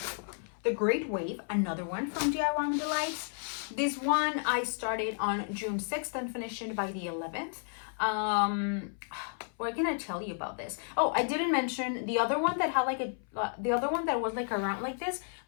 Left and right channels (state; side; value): silent; right; 56 dB below the other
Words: The Great Wave, another one from DIY Delights. This one I started on June 6th and finished it by the 11th. What can I tell you about this? Oh, I didn't mention the other one that had the other one that was around like this